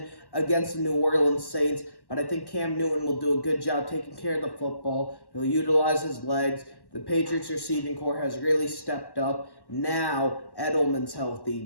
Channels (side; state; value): right; late; 1.1 ms